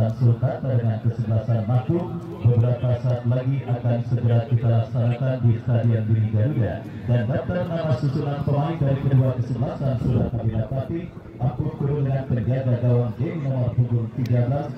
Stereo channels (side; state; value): both; identical; correlation 1.00